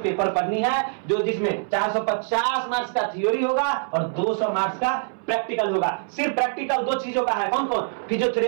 पेपर पढ़नी है, जो जिसमें 450 मार्क्स का थ्योरी होगा और 200 मार्क्स का प्रैक्टिकल होगा। सिर्फ प्रैक्टिकल दो चीजों का है, कौन कौन?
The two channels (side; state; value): left; silent; 62 dB below the other